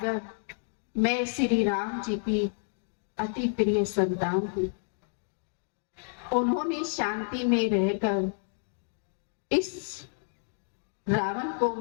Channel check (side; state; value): right; silent; digital silence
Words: मैं श्री राम जी की अति प्रिय संतान हूं। उन्होंने शांति में रहकर इस रावण को